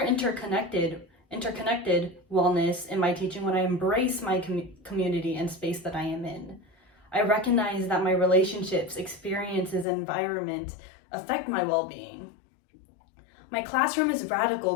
wellness in my teaching when I embrace my community and space that I am in. I recognize that my relationships, experiences, and environment affect my well-being. My classroom is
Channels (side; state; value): right; drops out; at 9.9 s